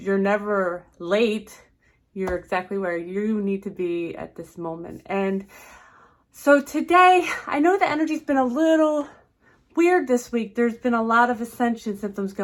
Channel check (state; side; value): identical; both; correlation 1.00